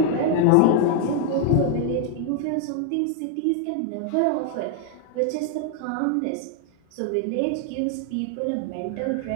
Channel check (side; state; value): both; different; correlation 0.00